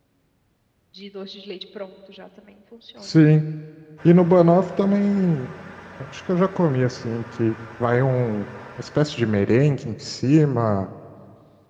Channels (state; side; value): identical; both; correlation 1.00